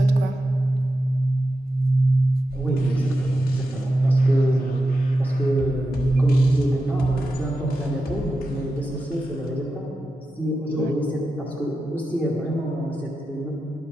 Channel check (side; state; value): both; normal; correlation 0.90